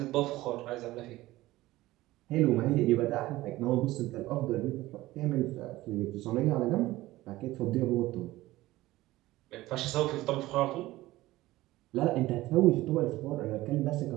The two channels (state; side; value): quieter; left; 17.5 dB